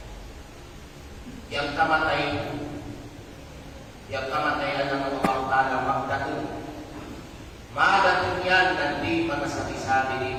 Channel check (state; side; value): identical; both; correlation 1.00